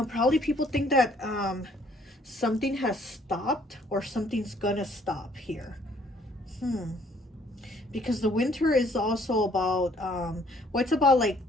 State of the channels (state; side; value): normal; both; correlation 0.62